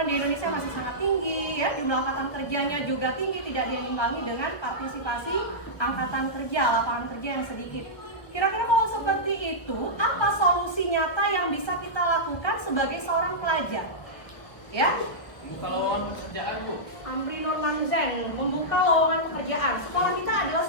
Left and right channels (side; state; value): right; late; 1.2 ms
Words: di Indonesia masih sangat tinggi, ya, jumlah angkatan kerjanya juga tinggi, tidak diimbangi dengan partisipasi angkatan kerja, lapangan kerja yang sedikit. Kira-kira kalau seperti itu, apa solusi nyata yang bisa kita lakukan sebagai seorang pelajar? Ya, Membuka lowongan pekerjaan, Bu. Amri Nurman Zen, membuka lowongan pekerjaan. Sekolah kita adalah